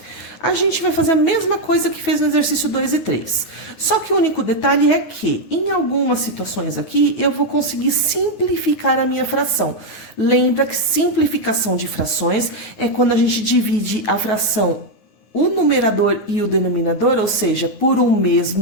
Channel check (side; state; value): right; late; 9.8 ms